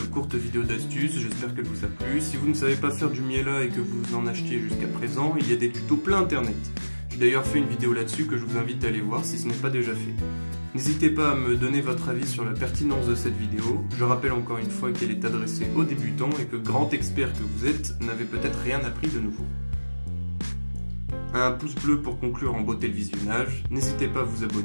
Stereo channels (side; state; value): both; inverted; correlation -1.00